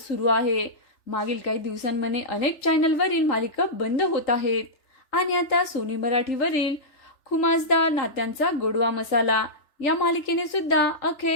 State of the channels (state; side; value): late; right; 3.4 ms